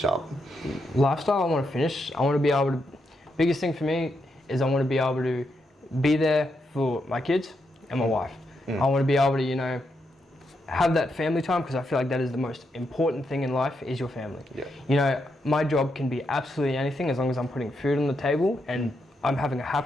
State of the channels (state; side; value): normal; both; correlation 0.82